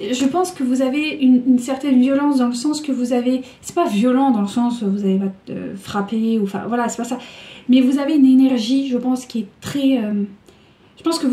je pense que vous avez une certaine violence dans le sens que vous avez... C'est pas violent dans le sens où vous allez frapper, ou enfin voilà, c'est pas ça. Mais vous avez une énergie, je pense, qui est très... je pense que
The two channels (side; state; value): both; identical; correlation 1.00